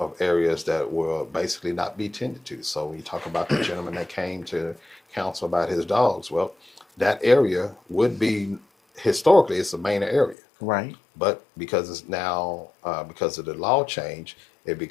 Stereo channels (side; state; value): right; drops out; at 10.4 s